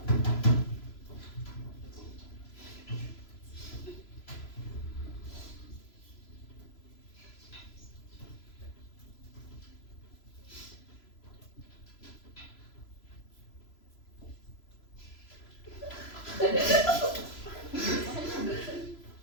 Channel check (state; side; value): late; right; 3.0 ms